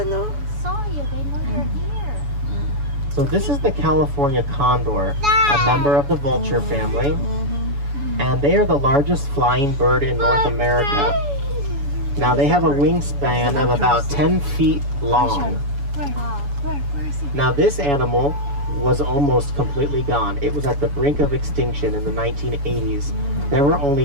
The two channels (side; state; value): left; late; 7.1 ms